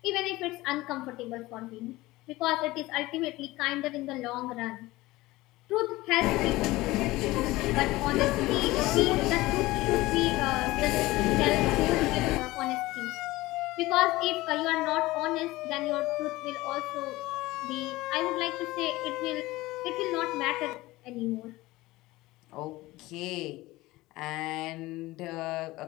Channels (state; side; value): quieter; right; 19.1 dB